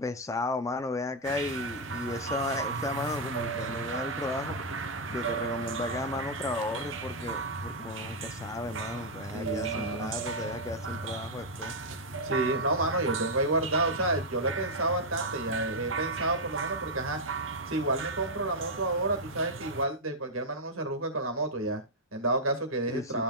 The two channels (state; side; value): normal; both; correlation -0.03